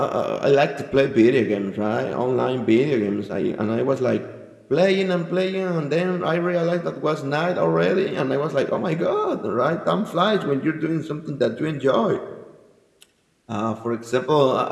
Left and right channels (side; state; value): both; identical; correlation 1.00